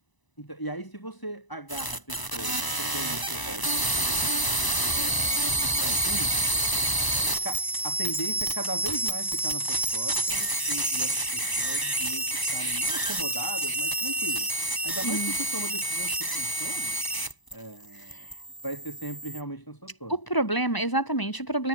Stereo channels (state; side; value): late; right; 1.0 ms